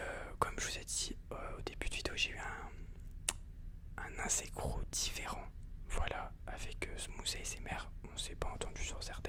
Comme je vous ai dit au début de vidéo, j'ai eu un asynchro différent. Voilà, avec Smooth ASMR, on s'est pas entendu sur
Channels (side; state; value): both; identical; correlation 1.00